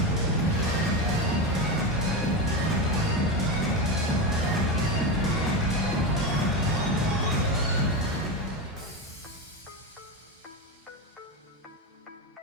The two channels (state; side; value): normal; both; correlation 0.16